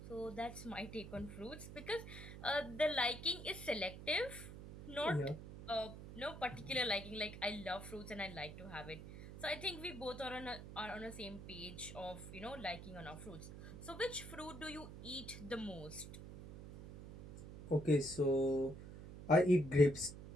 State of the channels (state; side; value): noise; right; hum, 12 dB below the sound